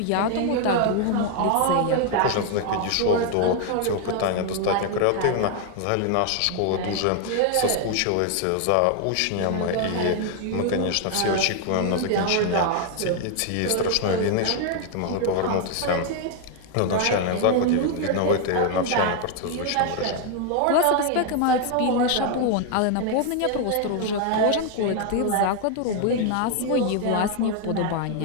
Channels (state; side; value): different; both; correlation 0.00